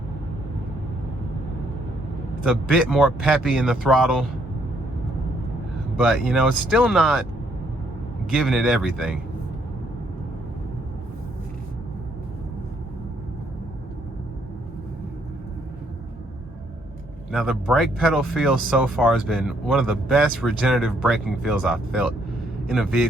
It's a bit more peppy in the throttle. But, you know, it's still not giving it everything. Now, the brake pedal feel so far has been one of the best regenerative braking feels I've felt in a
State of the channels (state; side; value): normal; both; correlation 0.70